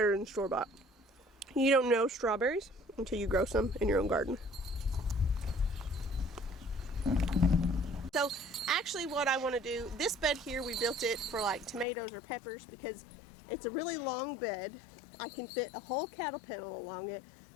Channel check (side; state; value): right; drops out; at 11.9 s